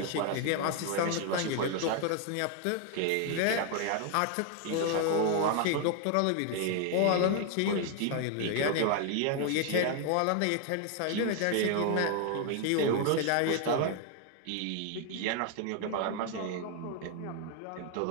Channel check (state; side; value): different; both; correlation 0.00